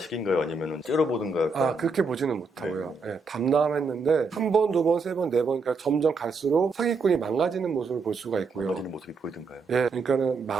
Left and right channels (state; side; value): quieter; left; 4.1 dB